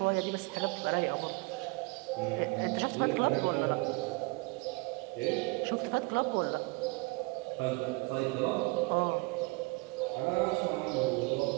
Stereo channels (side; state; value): left; quieter; 27.6 dB